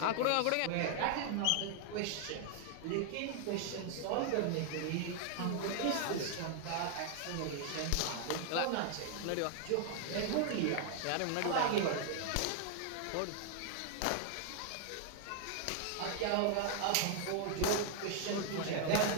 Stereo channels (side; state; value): both; different; correlation 0.00